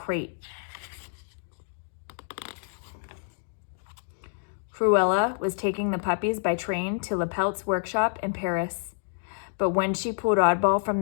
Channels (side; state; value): right; silent; digital silence